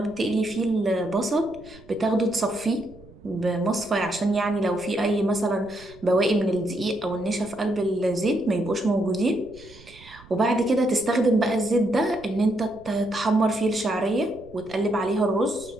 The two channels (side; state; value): right; noise; rumble, 23 dB below the sound